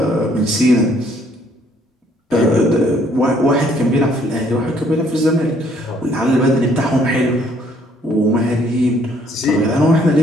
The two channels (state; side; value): normal; both; correlation 0.64